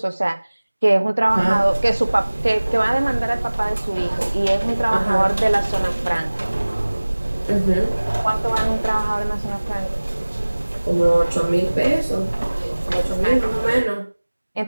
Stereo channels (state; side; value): inverted; both; correlation -1.00